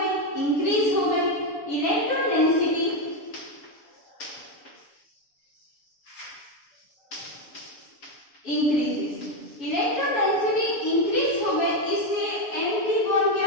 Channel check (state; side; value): late; right; 7.0 ms